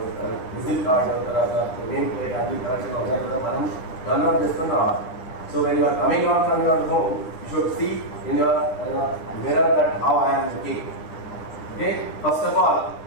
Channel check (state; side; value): late; right; 9.8 ms